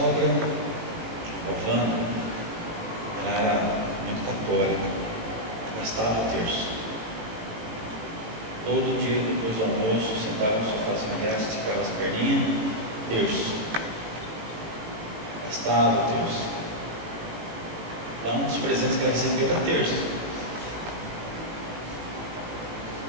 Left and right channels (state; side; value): late; left; 18 ms